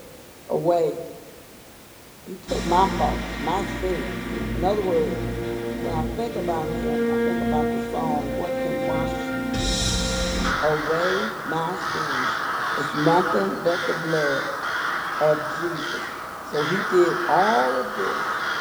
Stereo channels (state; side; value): identical; both; correlation 1.00